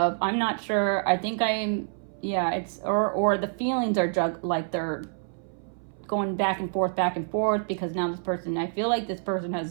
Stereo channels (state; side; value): silent; left; 60 dB below the other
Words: I'm not sure, I think I'm, yeah, it's, or the feelings are like they're going back and forth, because now this person, I feel like this person